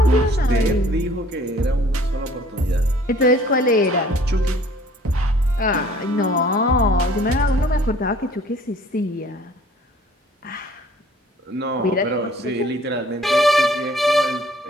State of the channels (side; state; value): both; normal; correlation 0.54